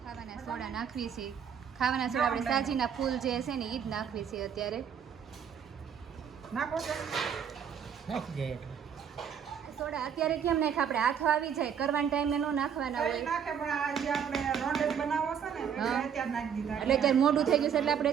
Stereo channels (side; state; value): left; quieter; 7.8 dB